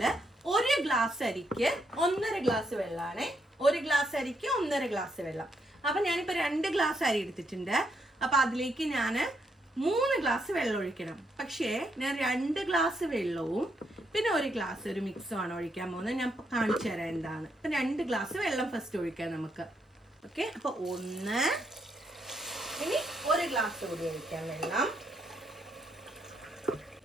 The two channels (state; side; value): normal; both; correlation 0.77